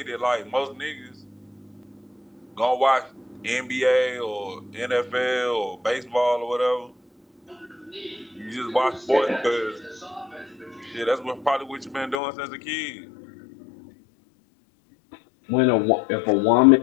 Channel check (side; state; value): right; drops out; at 12.2 s